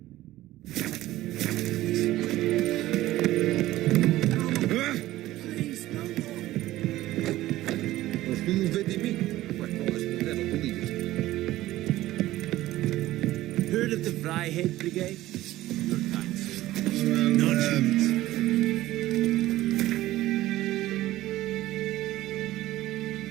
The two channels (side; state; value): left; quieter; 15.8 dB